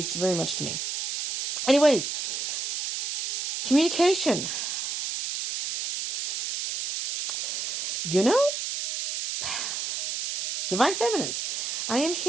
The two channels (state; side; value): noise; right; hiss, 3 dB below the sound